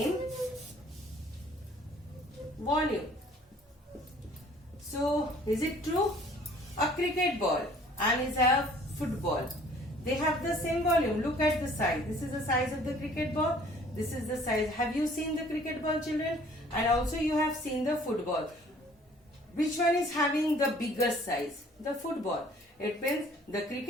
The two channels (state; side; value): normal; both; correlation 0.55